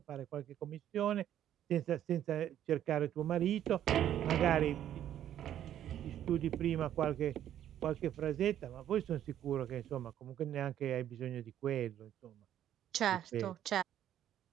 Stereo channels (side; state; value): left; quieter; 11.0 dB